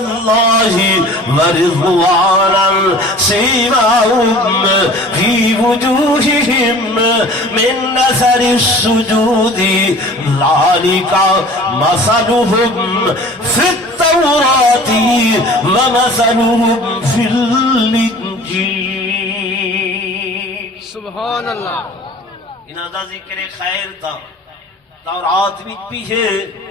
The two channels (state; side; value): normal; both; correlation 0.45